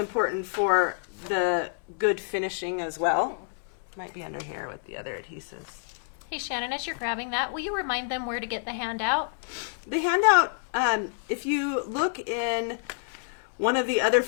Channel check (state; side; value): silent; right; digital silence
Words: for the good finishing as well. Might be under here with the other adhesives. Hey, Shannon, as you're grabbing that, will you remind them where to get the handout? The handout, if you look in one of the other